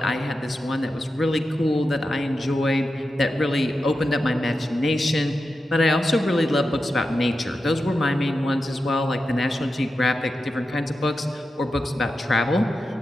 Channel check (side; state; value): both; normal; correlation 0.90